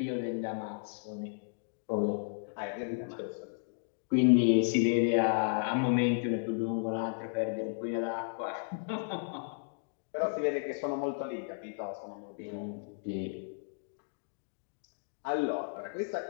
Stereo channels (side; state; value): right; silent; digital silence